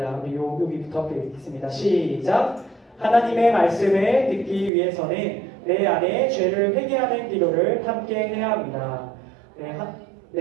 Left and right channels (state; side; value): drops out; left; at 4.7 s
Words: 우리 여기부터 함께 읽겠습니다. 시작! 하나님의 말씀을 듣기 위해서는 내 안에 죄를 회개하는 기도를 함께 해야 합니다.